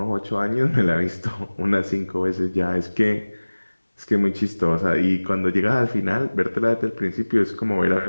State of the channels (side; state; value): both; inverted; correlation -1.00